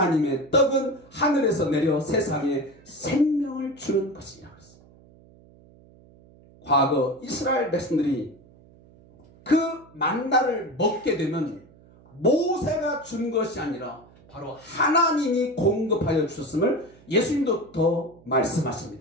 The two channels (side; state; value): right; noise; hum, 26 dB below the sound